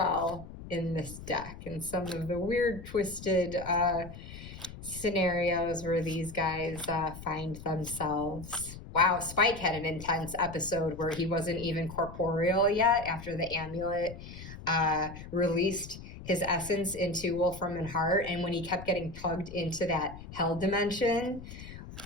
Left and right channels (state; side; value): noise; left; rumble, 13 dB below the sound